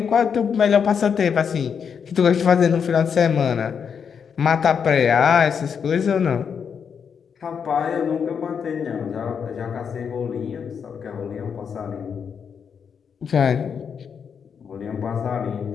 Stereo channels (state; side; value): quieter; right; 6.9 dB